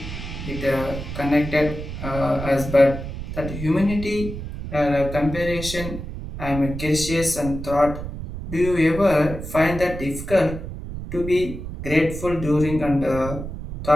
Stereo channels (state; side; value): noise; right; rumble, 8 dB below the sound